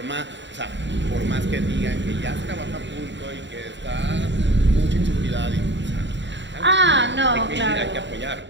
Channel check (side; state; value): left; late; 0.53 ms